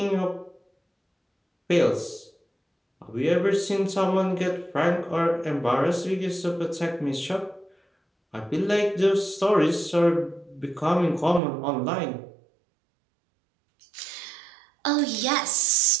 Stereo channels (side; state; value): left; drops out; at 11.4 s